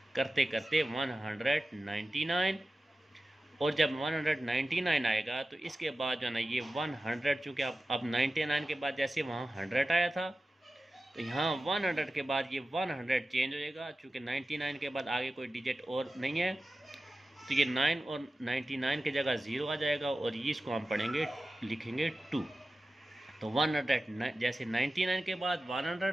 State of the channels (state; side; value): normal; both; correlation 0.95